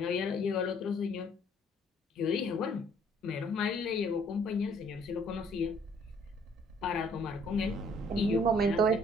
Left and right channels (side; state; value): both; normal; correlation 0.61